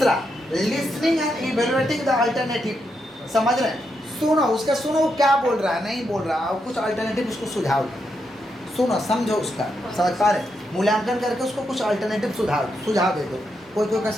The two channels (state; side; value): normal; both; correlation 0.82